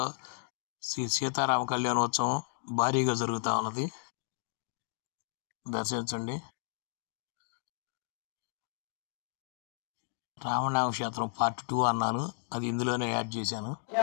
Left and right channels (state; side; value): silent; right; digital silence